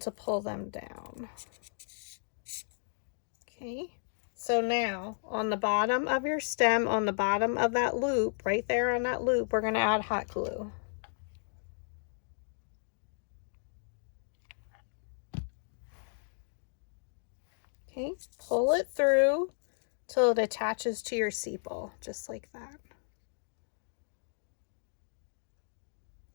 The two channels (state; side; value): silent; right; digital silence